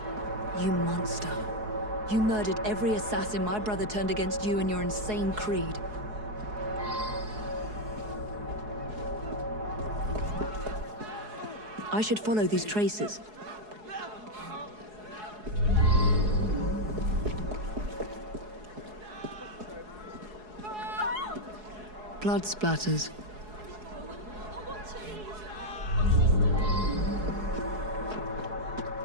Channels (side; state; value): left; late; 4.7 ms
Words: You monster. You murdered every assassin my brother turned against you and your insane creed. I should follow these traces. Blood splatters.